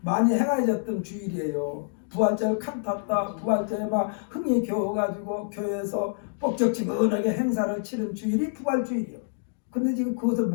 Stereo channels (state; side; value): silent; right; digital silence